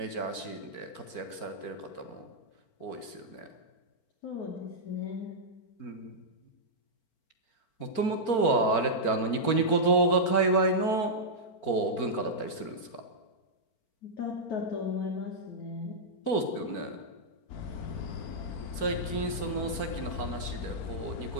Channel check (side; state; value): right; late; 4.4 ms